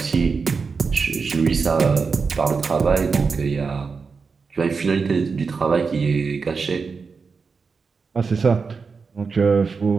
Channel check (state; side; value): quieter; left; 5.0 dB